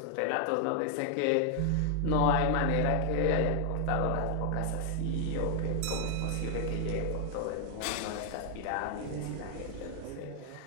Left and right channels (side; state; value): both; different; correlation 0.00